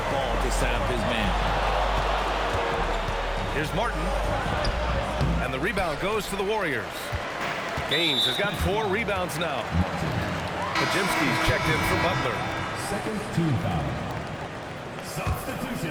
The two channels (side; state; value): both; identical; correlation 1.00